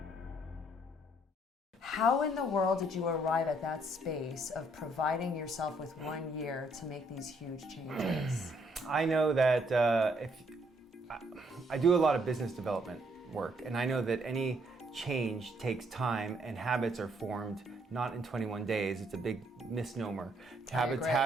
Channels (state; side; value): normal; both; correlation 0.69